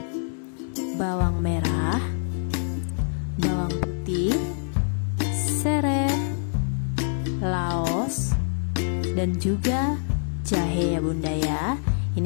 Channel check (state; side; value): silent; right; digital silence